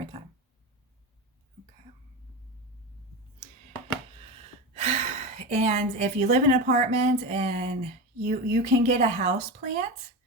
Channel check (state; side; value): normal; both; correlation 0.21